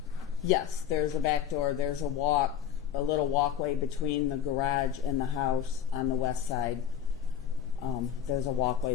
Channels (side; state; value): right; quieter; 9.0 dB